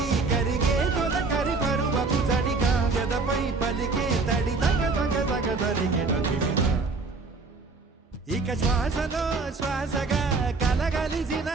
కరిగే తొల కరి పరువపు జడిగా ఎదపై పలికే తడి తగ తగ తగ తరిగిన దివిన ఇక శ్వాసలో శ్వాసగా కలగలిసిన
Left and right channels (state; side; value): quieter; left; 4.0 dB